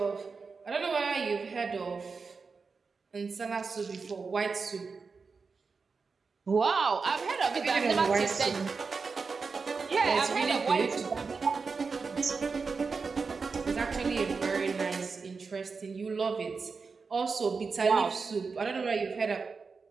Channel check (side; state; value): left; quieter; 4.8 dB